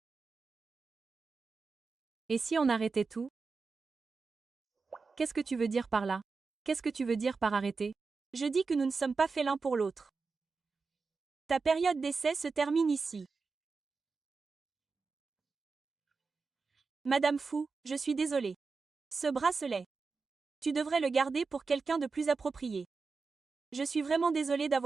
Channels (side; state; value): left; quieter; 4.5 dB